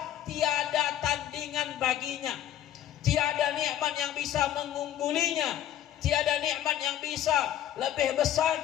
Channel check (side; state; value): right; quieter; 11.5 dB